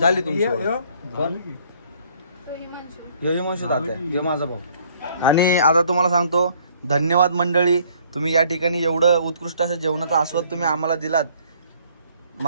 तुमची ओळख. कोण? यो हिमांशू तात्या. यो माझा भाऊ. आणि आता तुम्हाला सांगतो धन्यवाद मंडळी. तुम्ही या ठिकाणी एवढं उत्कृष्ट असं जेवणाचा आस्वाद तुम्ही आम्हाला दिलात.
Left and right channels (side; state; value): both; inverted; correlation -0.61